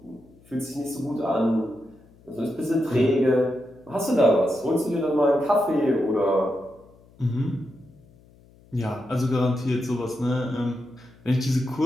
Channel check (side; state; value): left; noise; hum, 27 dB below the sound